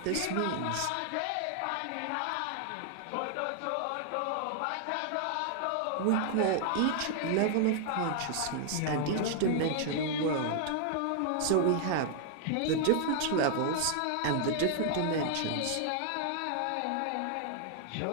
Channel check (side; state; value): both; different; correlation 0.00